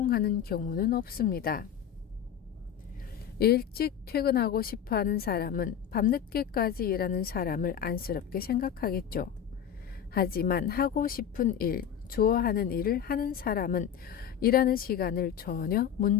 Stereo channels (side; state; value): right; quieter; 9.0 dB